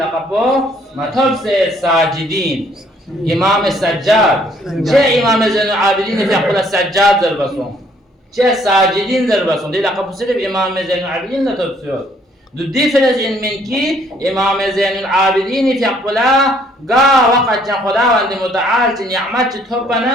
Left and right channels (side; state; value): both; normal; correlation 0.64